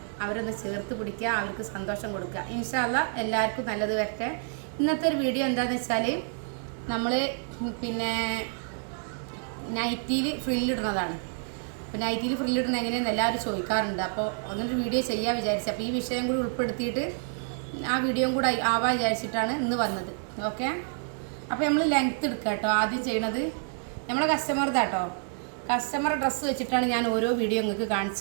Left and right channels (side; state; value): left; silent; 59 dB below the other